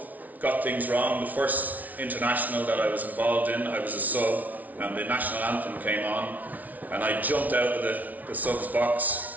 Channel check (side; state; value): left; late; 0.075 ms